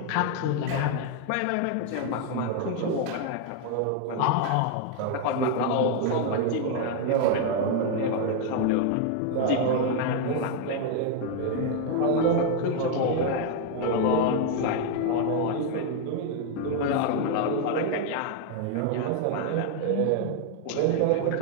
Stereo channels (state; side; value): different; both; correlation 0.00